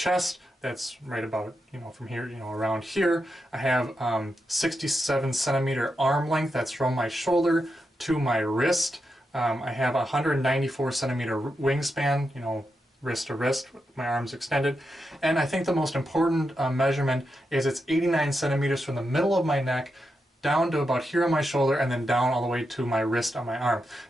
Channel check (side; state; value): both; normal; correlation 0.86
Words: That's right about, from here, around here. I have 67 centimeter arm length. That's from my shoulder to my wrist. I have a 194 centimeter wingspan, wrist to wrist, my arms extended. And I think the most important measurement is it's 89 centimeters from the middle of my neck down to about here on my shoulder, and then down all the way to my wrist on my arm.